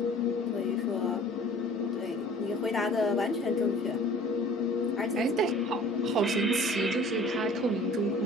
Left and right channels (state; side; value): normal; both; correlation 0.48